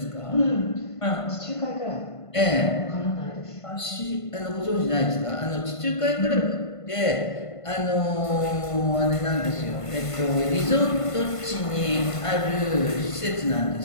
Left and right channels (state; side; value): late; right; 1.5 ms